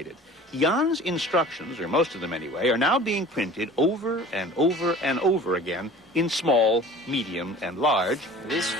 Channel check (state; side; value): normal; both; correlation 0.44